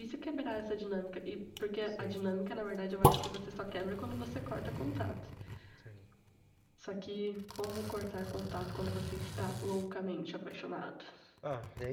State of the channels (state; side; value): identical; both; correlation 1.00